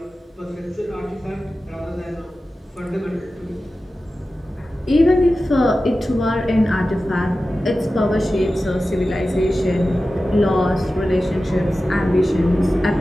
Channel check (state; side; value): normal; both; correlation 0.94